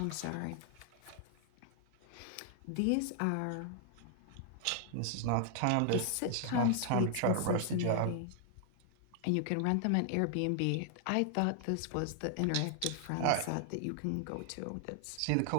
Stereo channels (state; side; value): different; both; correlation 0.00